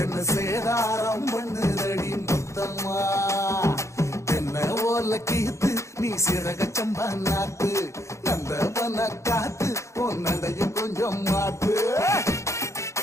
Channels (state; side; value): late; right; 0.14 ms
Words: என்ன சேதாரம் பண்ணுதடி முத்தம்மா. என்ன ஓல கீத்து நீ சிறக சம்பா நாத்து, நந்தவன காத்து உன் நடையும் கொஞ்சம் மாத்து.